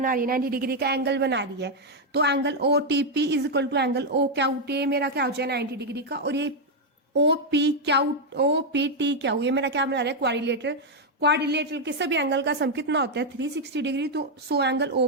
रही है, 90 डिग्री का एंगल बना रही है। तो angle O T P is equal to angle O Q T, मेरा क्या हो जाए 90 डिग्री का। और ये ओ पी टी क्यू, ये मेरा क्या बना रहा है, क्वाड्रिलेटरल। क्वाड्रिलेटरल के सभी एंगल का सम कितना होता है, 360 डिग्री। तो so angle O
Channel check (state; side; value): normal; both; correlation 0.01